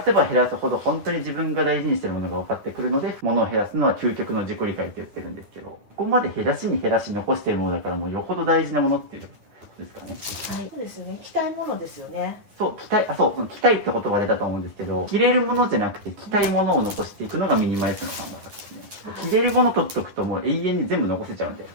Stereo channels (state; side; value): late; left; 9.8 ms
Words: せば減らすほど本当に自分が大事にしてるものが分かってくるので、物を減らすのは究極の自己理解って言ってるんですけど、ここまで減らしに減らし残してるものだからもうよほど大事なものっていうですかね。はい。そうですね。着たいものですよね。そう着たい、その着たいって言葉出たと思うんですけど、着れるものじゃなくて着たいものを残していくのがミニマリストの考え方ですね。着れるもの取っとくともう永遠に全部残せちゃうんで、